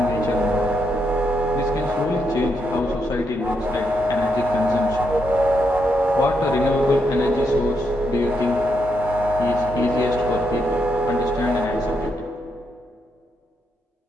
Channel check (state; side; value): normal; both; correlation 0.79